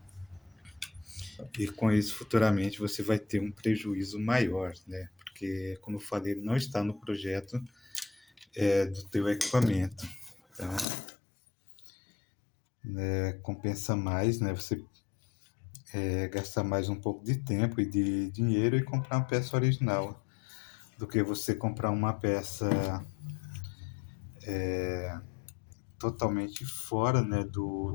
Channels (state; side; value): drops out; right; at 10.9 s